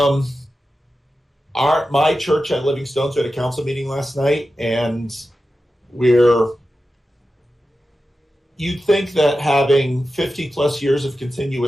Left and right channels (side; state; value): both; normal; correlation 0.92